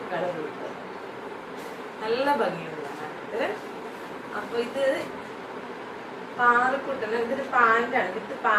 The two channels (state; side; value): identical; both; correlation 1.00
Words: കളർ ഉടുപ്പ്, നല്ല ഭംഗിയുള്ളതാണ്. അപ്പൊ ഇത് പാറക്കുട്ടന്, ഇതൊരു പാന്റാണ്, വിത്ത്